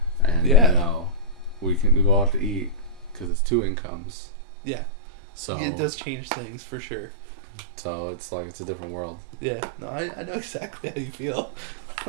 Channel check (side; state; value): left; drops out; at 3.3 s